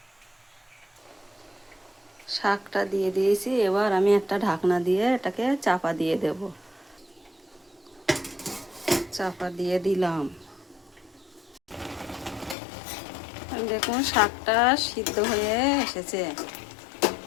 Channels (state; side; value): drops out; right; at 12.6 s